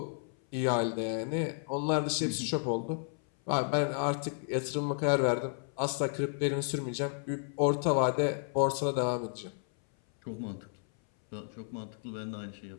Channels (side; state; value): right; silent; 56 dB below the other